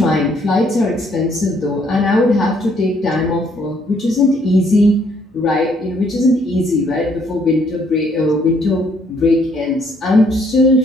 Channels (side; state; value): both; normal; correlation 0.67